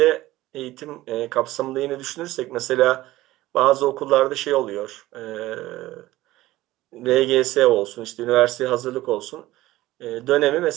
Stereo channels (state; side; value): quieter; left; 16.9 dB